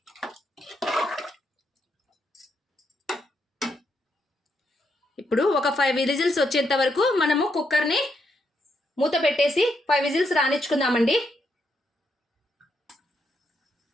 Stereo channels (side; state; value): both; normal; correlation 0.79